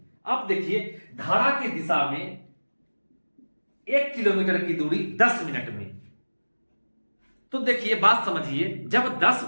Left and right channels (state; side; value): inverted; both; correlation -1.00